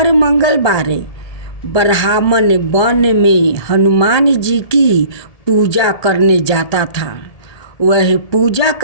मंगलवार ब्राह्मण वन में हनुमान जी की पूजा करने जाता था। वह पूजा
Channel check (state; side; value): late; right; 1.7 ms